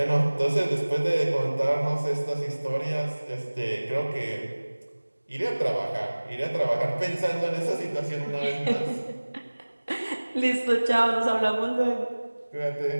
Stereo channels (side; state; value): both; inverted; correlation -1.00